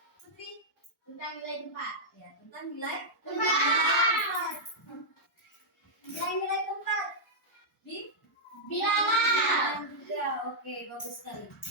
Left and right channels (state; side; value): normal; both; correlation -0.08